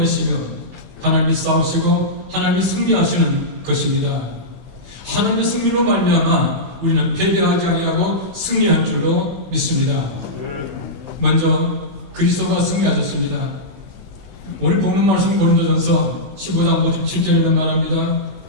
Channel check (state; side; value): late; left; 16 ms